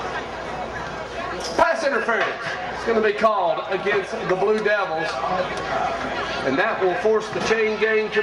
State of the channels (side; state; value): both; identical; correlation 1.00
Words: Pass interference. It's going to be called against the Blue Devils. And that will force the chain gang to